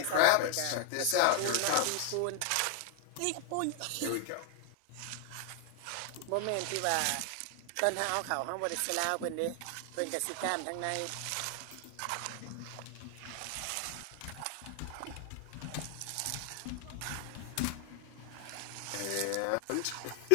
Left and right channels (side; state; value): both; different; correlation 0.00